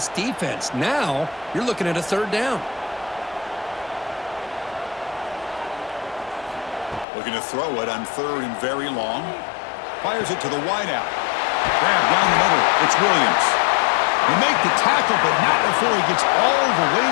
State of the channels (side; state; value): right; drops out; at 7.1 s